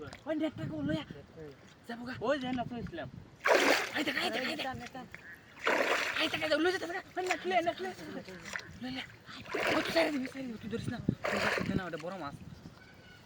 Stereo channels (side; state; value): both; identical; correlation 1.00